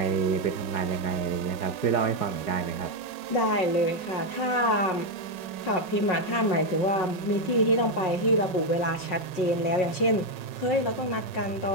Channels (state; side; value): late; right; 5.4 ms